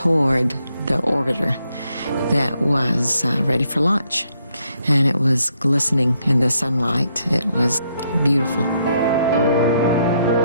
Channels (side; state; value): both; inverted; correlation -0.75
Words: the orbiter that was ready for launch. And it was glistening in the sunlight. It was beautiful.